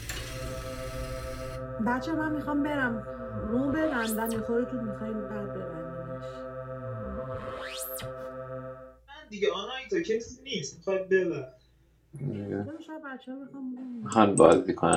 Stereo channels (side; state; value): both; identical; correlation 1.00